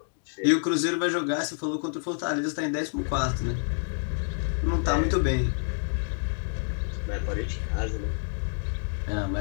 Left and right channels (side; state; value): right; silent; digital silence